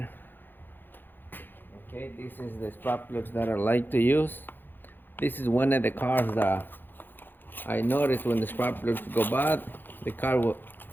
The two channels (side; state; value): right; late; 0.095 ms